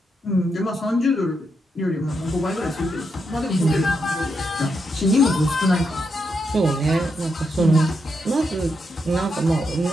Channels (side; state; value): both; normal; correlation 0.82